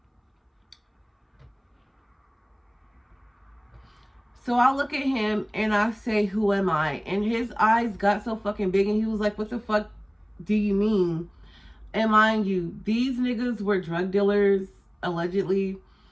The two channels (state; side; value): identical; both; correlation 1.00